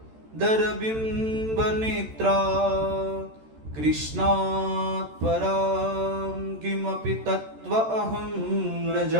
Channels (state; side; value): late; left; 13 ms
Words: दरबिम्बनेत्रा कृष्णात् परां किमपि तत्त्व अहं न